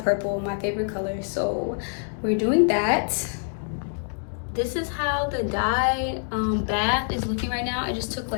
purple, my favorite color, so we're doing that. This is how the dye bath is looking right now. I just took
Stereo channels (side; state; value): right; silent; digital silence